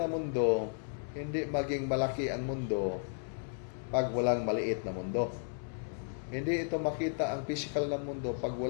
mundo, hindi maging malaki ang mundo pag walang maliit na mundo. Hindi ito makita ang physical na mundo pag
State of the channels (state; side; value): silent; right; 55 dB below the other